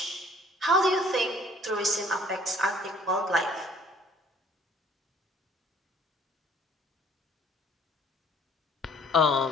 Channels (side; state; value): both; normal; correlation 0.57